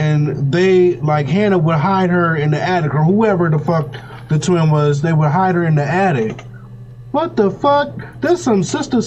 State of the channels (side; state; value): both; identical; correlation 1.00